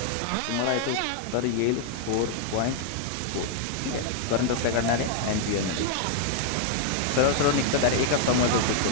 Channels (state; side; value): different; both; correlation 0.00